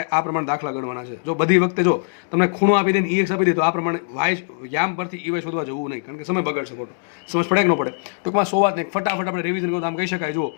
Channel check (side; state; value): right; silent; digital silence